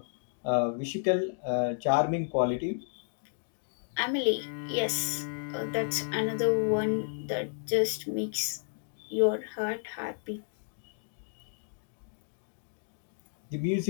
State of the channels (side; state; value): right; silent; digital silence